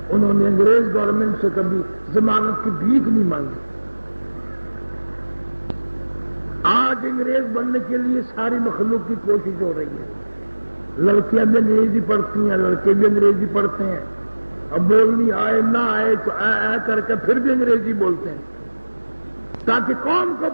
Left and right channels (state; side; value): inverted; both; correlation -1.00